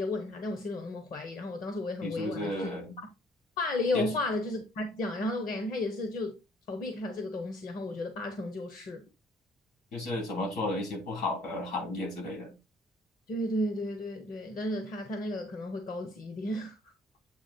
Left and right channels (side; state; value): both; normal; correlation 0.60